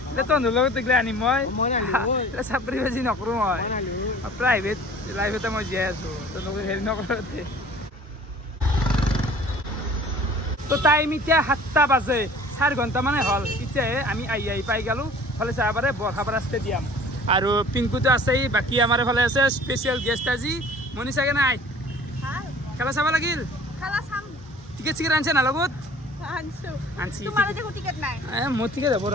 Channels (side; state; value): both; normal; correlation 0.48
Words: তহঁতৰ লগত এইগিলা আনিম মই চাপৰি বাজি নকৰোঁ মই প্ৰাইভেট লাইফতে মই জীয়াই আছোঁ তহঁতক হেৰি নকৰোঁতে তো টাইম এতিয়া 7টা বাজে 4 ঘণ্টা মানে হ'ল এতিয়াহে আমি আহি পাই গ'লোঁ ফালে চাব পাৰে বৰখাপাৰা ষ্টেডিয়াম আৰু পিংকুটো আছেই বাকী আমাৰ এইফালে আছে স্পেচিয়েল গেষ্ট আজি মনিষাকে নাই খেলা চাব লাগিল টিকেট চিকেট আনিছে না লগত মোৰ টিকেট হ'ব